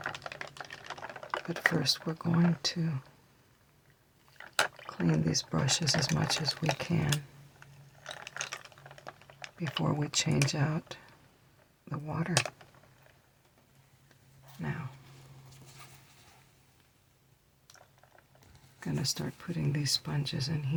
But first, we're going to clean these brushes as much as we can before we change out the water. Now, I'm going to start putting these sponges in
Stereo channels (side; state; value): both; identical; correlation 1.00